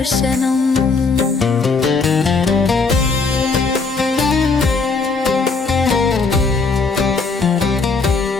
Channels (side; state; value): right; quieter; 4.3 dB